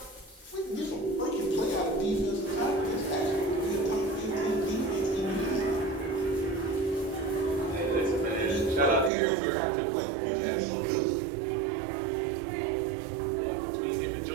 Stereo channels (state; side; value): drops out; left; at 9.1 s